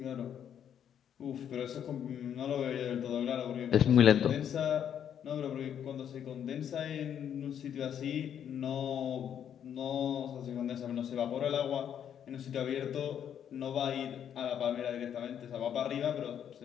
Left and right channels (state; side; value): quieter; right; 9.1 dB